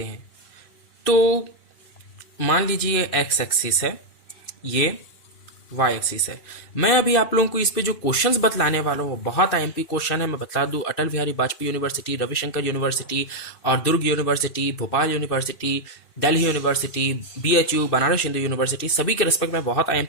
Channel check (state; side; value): late; right; 2.6 ms